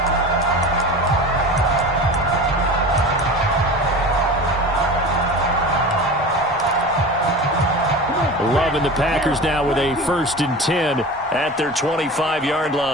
Love and the Packers now with a 1st and 10 at their 25-yard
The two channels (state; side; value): normal; both; correlation 0.33